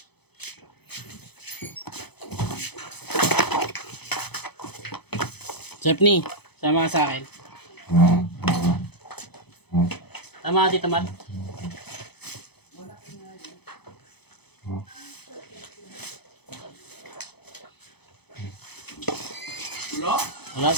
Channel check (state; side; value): late; right; 0.98 ms